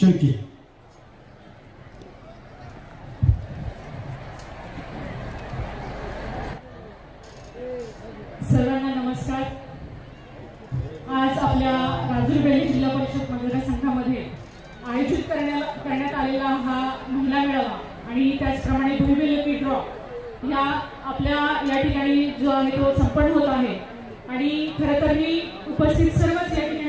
सर्वांना नमस्कार. आज आपल्या राजूर बेल्ली जिल्हा परिषद मतदारसंघामध्ये आयोजित करण्यात आलेला हा महिला मेळावा आणि त्याचप्रमाणे भुईबेल लकी ड्रॉ ह्या आपल्या या ठिकाणी जो आहे तो संपन्न होत आहे. आणि खरं तर मी उपस्थित सर्वच या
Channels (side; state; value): both; identical; correlation 1.00